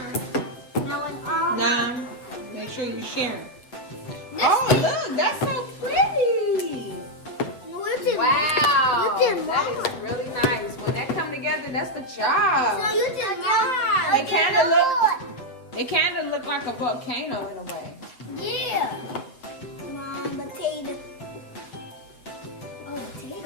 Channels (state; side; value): late; right; 7.7 ms